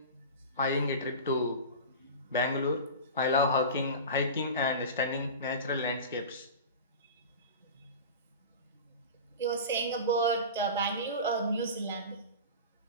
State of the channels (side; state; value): both; inverted; correlation -0.30